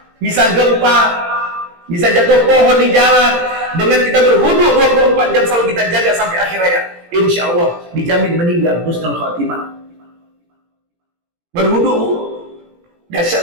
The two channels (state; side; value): late; left; 18 ms